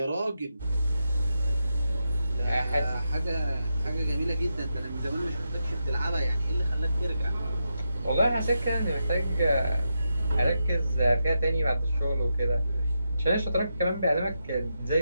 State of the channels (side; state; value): both; inverted; correlation -0.86